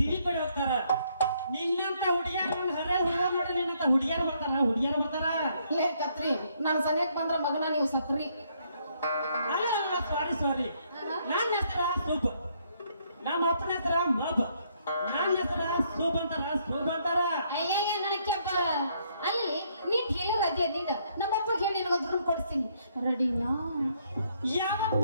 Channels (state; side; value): inverted; both; correlation -0.70